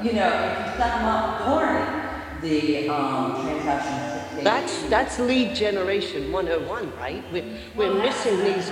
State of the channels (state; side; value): identical; both; correlation 1.00